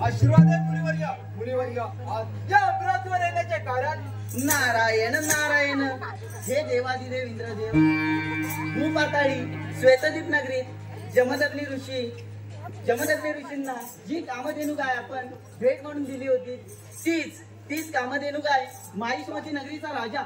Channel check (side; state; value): both; identical; correlation 1.00